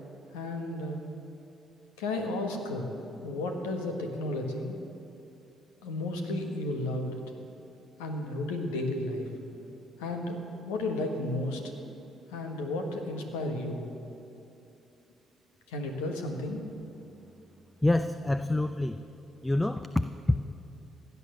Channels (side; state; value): both; normal; correlation 0.71